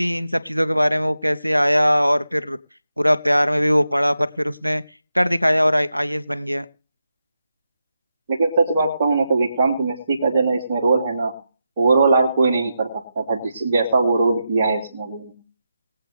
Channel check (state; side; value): inverted; both; correlation -0.88